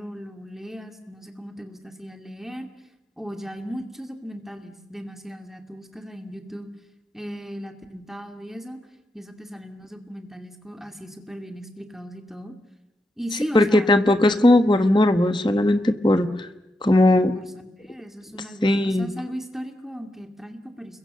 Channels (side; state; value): both; normal; correlation 0.85